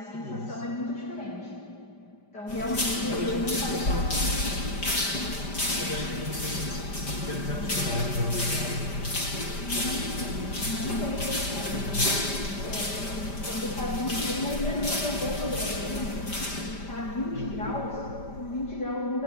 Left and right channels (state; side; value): late; right; 5.0 ms